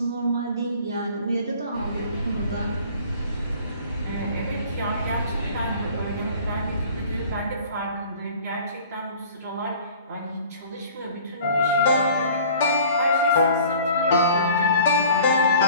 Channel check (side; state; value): both; inverted; correlation -0.48